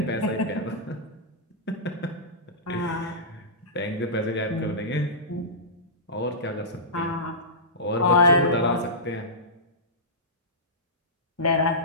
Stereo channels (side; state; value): both; normal; correlation -0.18